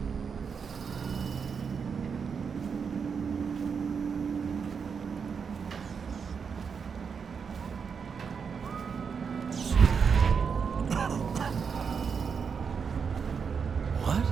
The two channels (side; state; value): left; quieter; 6.1 dB